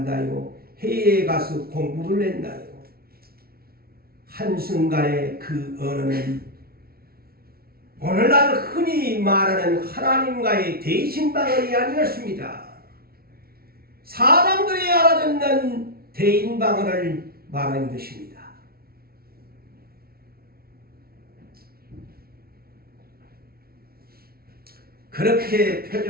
해외에 가서 공부를 했나요? 한순간에 그 언어는 오늘날 흔히 말하는 하나님과의 대신방언이 아니었습니다. 사람들이 알아듣는 대인방언을 말하는 것입니다. 그렇게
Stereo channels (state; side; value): late; left; 0.44 ms